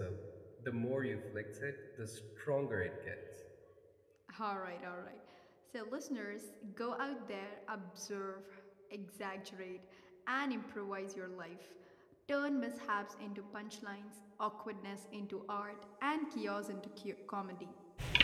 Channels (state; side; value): identical; both; correlation 1.00